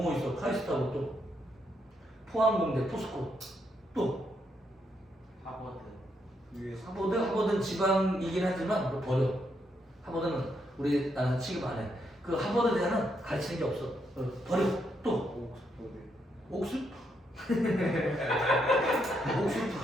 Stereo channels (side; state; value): both; normal; correlation 0.78